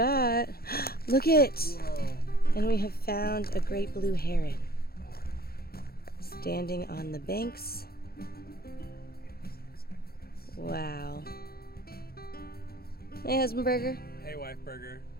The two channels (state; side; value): late; right; 0.44 ms